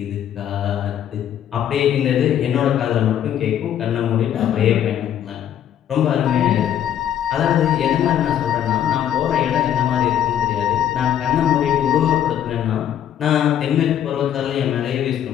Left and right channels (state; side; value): quieter; right; 10.2 dB